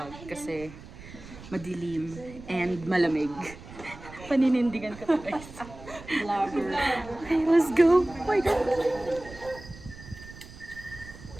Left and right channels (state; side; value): noise; right; rumble, 16 dB below the sound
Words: kasi madilim and malamig. Paninindigan ko to guys. Vlogger. Okay, let's go. Oh my God.